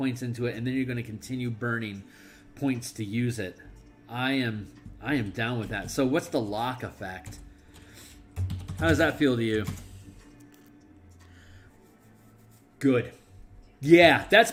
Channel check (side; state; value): both; identical; correlation 1.00